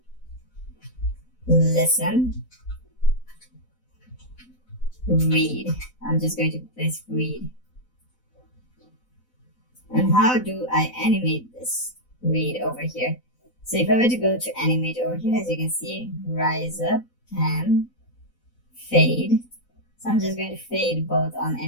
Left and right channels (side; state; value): right; late; 4.0 ms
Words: Listen. Read. I'm just going to place read. And how do I animate this read over here? So if I were to go to animate over here, as you can see, rise up, pan, fade. So I'm just going to fade both on